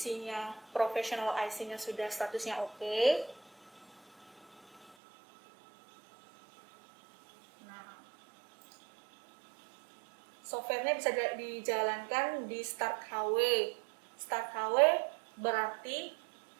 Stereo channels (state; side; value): drops out; left; at 4.9 s